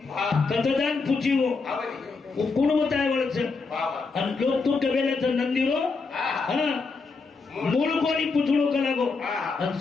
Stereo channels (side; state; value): right; quieter; 4.4 dB